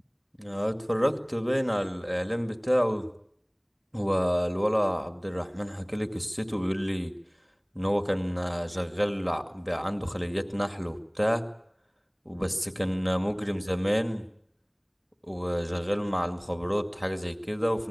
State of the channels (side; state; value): both; identical; correlation 1.00